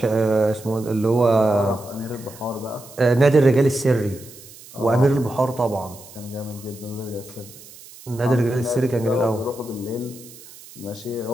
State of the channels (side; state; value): right; noise; hiss, 19 dB below the sound